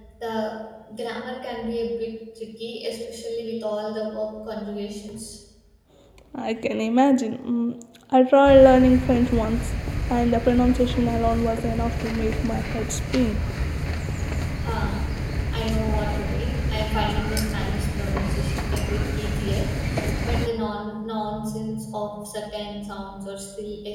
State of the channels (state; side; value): identical; both; correlation 1.00